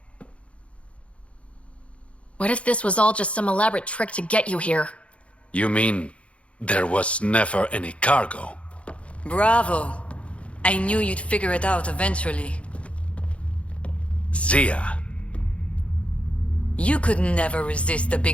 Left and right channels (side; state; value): right; late; 0.062 ms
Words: What if this was all just some elaborate trick to get you here? You mean there was never any cargo? Bravo. I knew you'd figure it out eventually. Zia You could never resist a